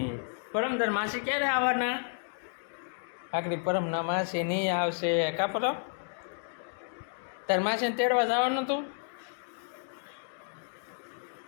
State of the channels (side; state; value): right; silent; digital silence